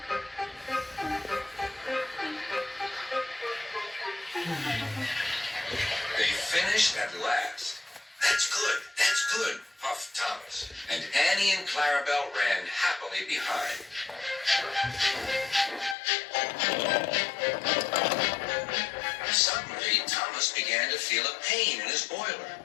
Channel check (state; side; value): drops out; right; at 16.0 s